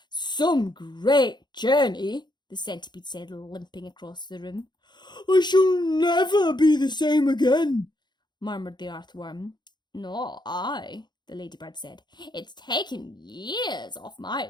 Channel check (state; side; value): late; right; 0.21 ms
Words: "Some great journey," the centipede said, limping across the room. "I shall never be the same again," murmured the earthworm. "Nor I," the ladybird said. "It's taken years off my